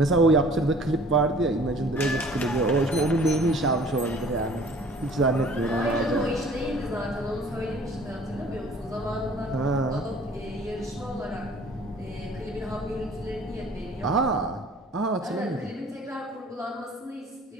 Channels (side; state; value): both; normal; correlation 0.51